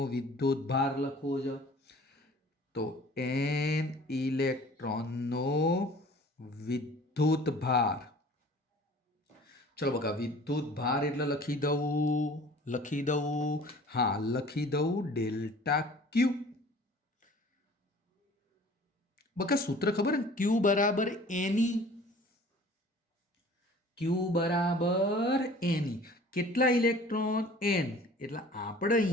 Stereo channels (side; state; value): both; normal; correlation 0.48